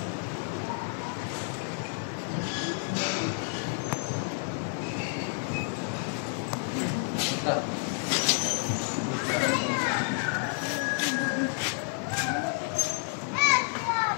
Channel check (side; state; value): right; silent; 58 dB below the other